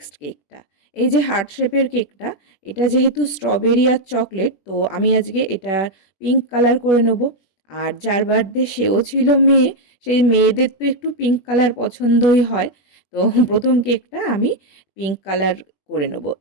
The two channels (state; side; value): late; right; 21 ms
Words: কেকটা। এই যে হার্ট শেপের কেকটা, এটা যেহেতু স্ট্রবেরি আর চকলেট, তো আমি আজকে এটা পিঙ্ক কালার করে নেব। আর যার বার্থডে সেও ছিল মেয়ে, সেই মেয়েদের তো একটু পিঙ্ক কালার পছন্দই হয়। তো প্রথম কেকটা আমি পিঙ্ক কালার করে নেব।